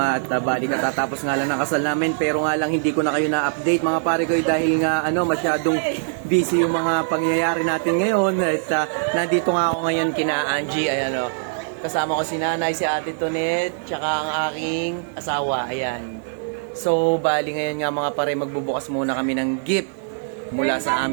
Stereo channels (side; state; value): left; silent; 64 dB below the other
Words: at bali katatapos nga lang ng kasal namin, pero nga lang hindi ko na kayo na-update mga pare ko dahil nga masyadong busy yung mga pangyayari natin ngayon. At nandito nga ako ngayon kina Angie, ayan kasama ko si nanay, si ate Tonet, tsaka ang aking asawa, ayan. So bali ngayon nga mga pare, magbubukas muna kami ng gift mula sa